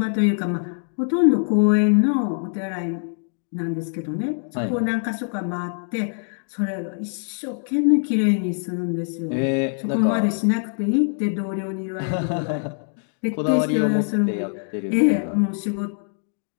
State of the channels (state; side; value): silent; right; 63 dB below the other